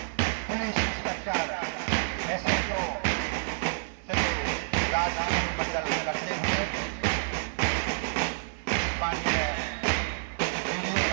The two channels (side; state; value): left; silent; 59 dB below the other